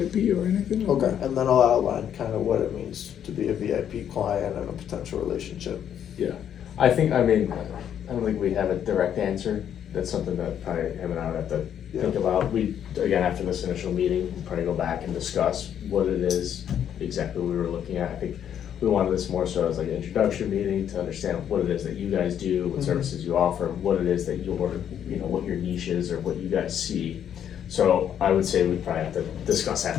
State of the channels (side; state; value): right; quieter; 9.4 dB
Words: or anything. Like Okay, and then I'll outline kind of what it means to be a VIP client and a potential relationship. Yeah. I think, I mean, I don't think we have a direct answer. That's something that probably him and I would have to think about. We, again, after this initial meeting, we'll probably go back and discuss what it is exactly we were looking at. I think we wanted this more so as like an introduction meeting to understand what it is that you guys do, what services you offer, what it is that your, you know, what your niche is or what you guys see. So I would say we probably have to discuss